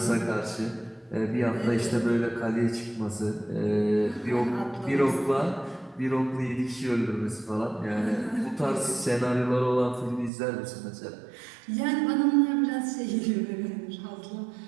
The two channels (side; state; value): left; drops out; at 10.3 s